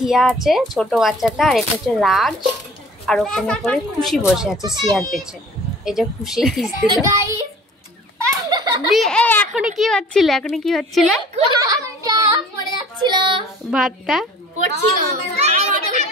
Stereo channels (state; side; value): normal; both; correlation 0.48